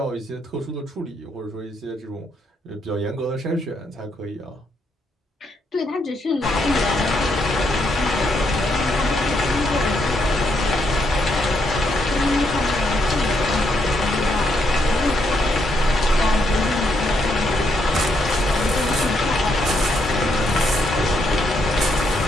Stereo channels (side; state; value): both; normal; correlation 0.76